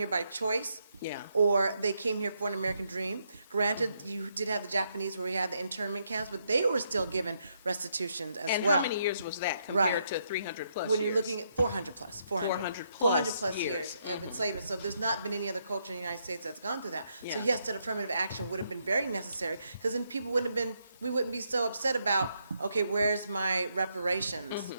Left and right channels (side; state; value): both; inverted; correlation -0.77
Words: by choice, Yeah. or they came here for an American dream. Granted, you did have the Japanese where we had the internment camps, but they were still given restitutions as And well. how many years was that compared Right. to 300 plus When you're years? looking at 400 plus, 400. 400 plus years of enslavement. So there's not been any other culture in the United States that's gone through that. So Yeah. yes, that affirmative action would have been very necessary, because then people we wouldn't be so upset about, okay, where's my reparations?